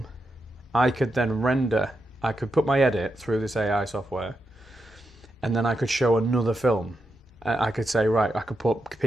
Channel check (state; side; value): normal; both; correlation 0.86